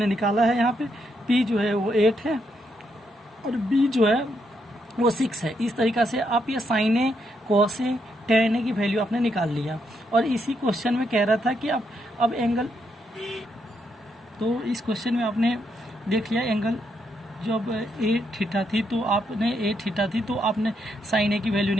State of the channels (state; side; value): normal; both; correlation 0.78